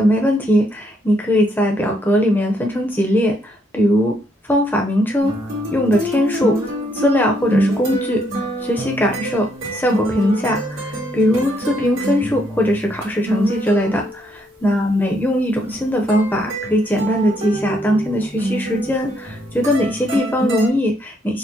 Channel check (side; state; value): both; normal; correlation 0.73